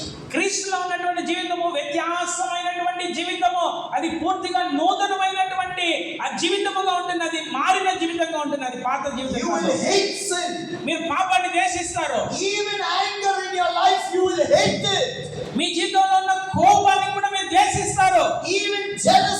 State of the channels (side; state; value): both; identical; correlation 1.00